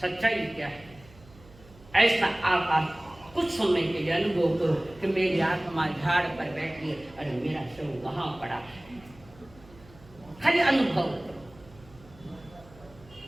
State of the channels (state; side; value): noise; right; hum, 23 dB below the sound